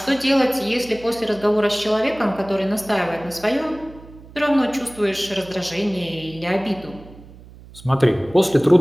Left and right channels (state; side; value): noise; right; hum, 20 dB below the sound